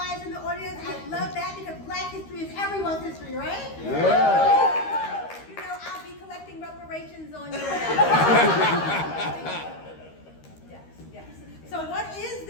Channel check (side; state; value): right; late; 13 ms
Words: in the audience. I love that because Black history is everyone's history, right? Yeah. You know, I'll be collecting reparations on your Yes. So what is